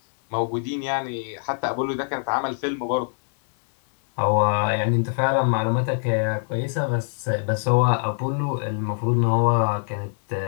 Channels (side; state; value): right; silent; 58 dB below the other